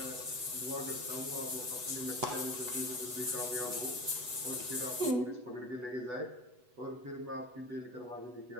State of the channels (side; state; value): left; late; 8.1 ms